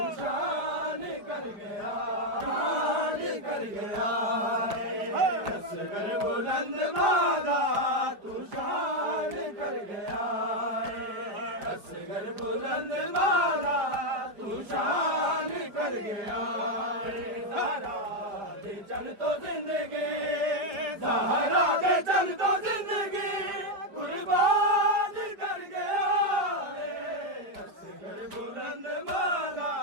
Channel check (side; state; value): left; late; 4.9 ms